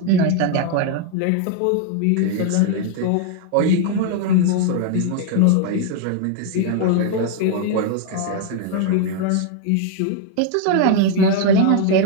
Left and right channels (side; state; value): both; different; correlation 0.00